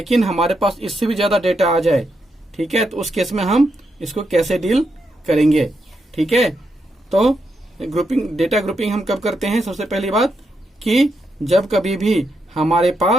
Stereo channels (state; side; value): normal; both; correlation 0.82